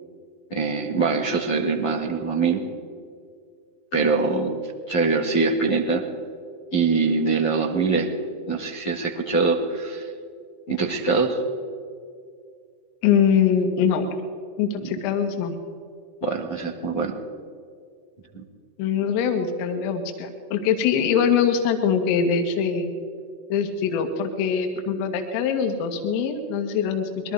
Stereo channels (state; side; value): late; right; 11 ms